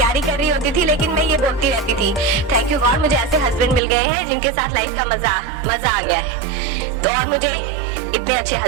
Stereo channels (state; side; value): drops out; left; at 3.8 s